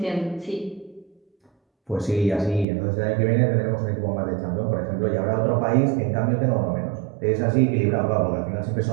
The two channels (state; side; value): drops out; left; at 2.7 s